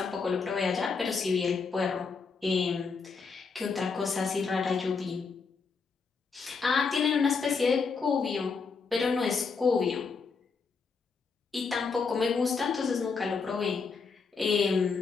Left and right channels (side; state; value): right; quieter; 5.0 dB